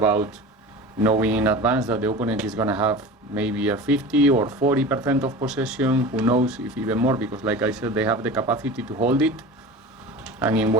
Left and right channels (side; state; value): both; normal; correlation 0.34